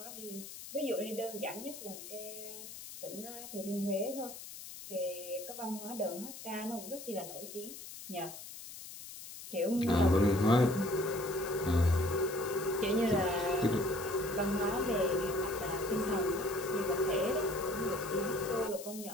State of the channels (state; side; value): noise; left; hiss, 12 dB below the sound